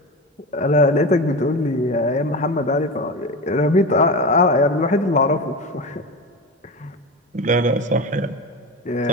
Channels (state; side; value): normal; both; correlation 0.24